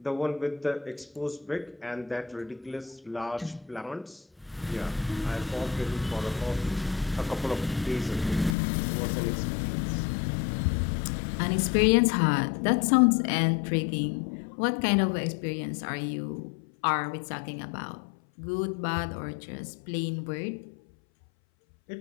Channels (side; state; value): right; drops out; at 8.6 s